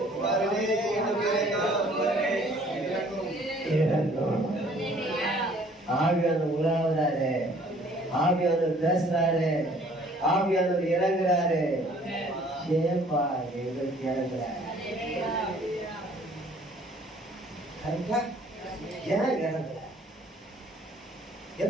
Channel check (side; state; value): both; normal; correlation 0.57